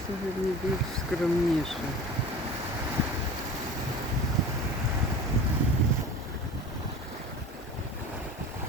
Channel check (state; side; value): normal; both; correlation 0.37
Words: сьогодні більш скромніше.